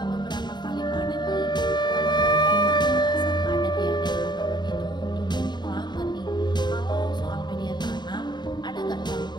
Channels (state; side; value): late; right; 0.21 ms